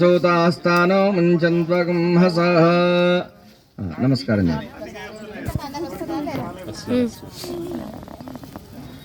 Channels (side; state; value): both; identical; correlation 1.00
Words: ముంచంత్వకం హసః. నమస్కారం చేయండి.